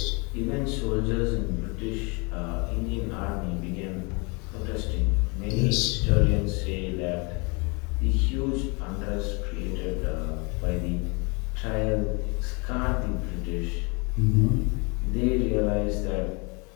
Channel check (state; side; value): quieter; right; 30.5 dB